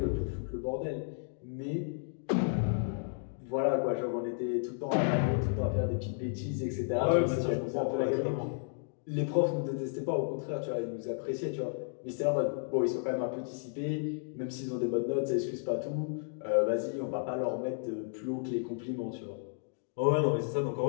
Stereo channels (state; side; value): silent; right; digital silence